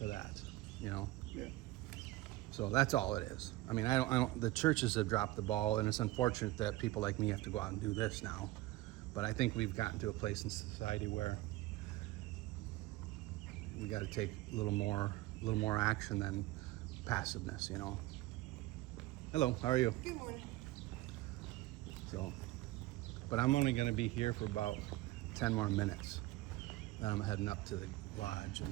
that, you know. Yeah. So that's all it is. I mean, the churches have dropped the ball, and it's unfortunate that people like me have to go out and do this now. But I think we've gotten to a place in society where we got to take a little more action than passiveness, you know. Hello, how are you? Good morning. So, but I'm only going to be here for about 10 more minutes. Then I'm heading up to the lodge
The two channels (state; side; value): quieter; left; 18.0 dB